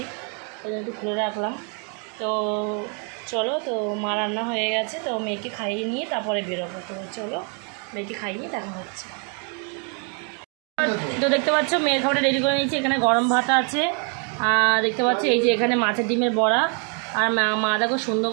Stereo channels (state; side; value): quieter; left; 38.5 dB